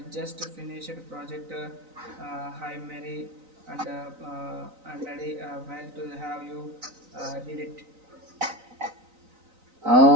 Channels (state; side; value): late; left; 3.9 ms